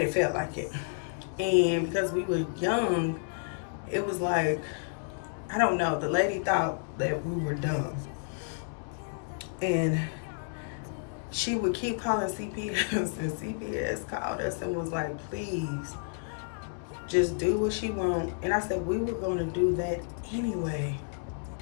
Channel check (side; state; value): right; silent; 57 dB below the other